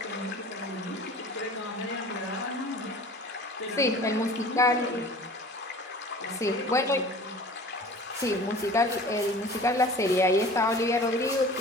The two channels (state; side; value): normal; both; correlation 0.43